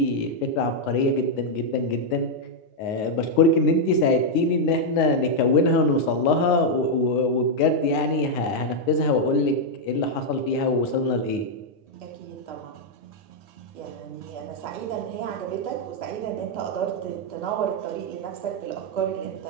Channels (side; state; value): right; late; 9.6 ms